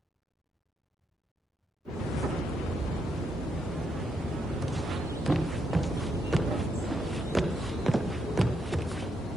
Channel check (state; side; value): normal; both; correlation 0.79